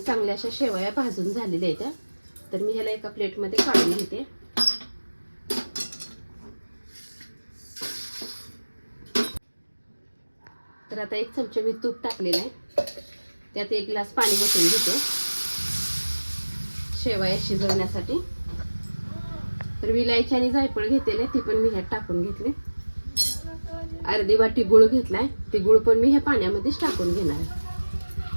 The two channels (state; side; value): inverted; both; correlation -1.00